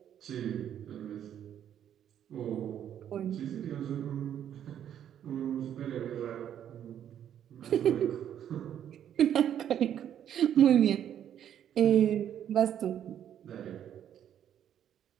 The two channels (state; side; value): quieter; left; 9.9 dB